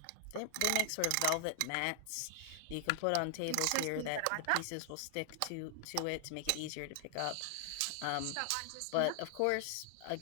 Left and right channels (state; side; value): different; both; correlation 0.00